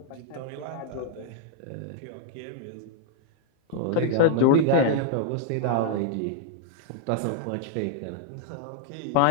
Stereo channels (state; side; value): different; both; correlation 0.00